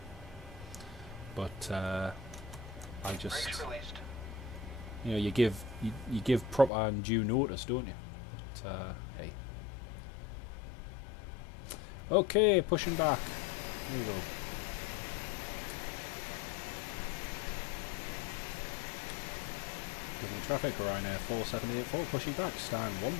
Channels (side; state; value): right; drops out; at 6.7 s